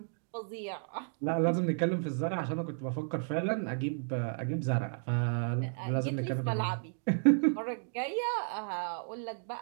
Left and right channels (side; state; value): left; silent; 56 dB below the other